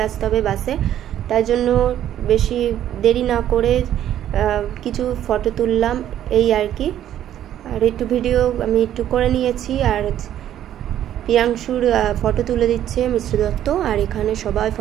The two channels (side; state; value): left; quieter; 11.3 dB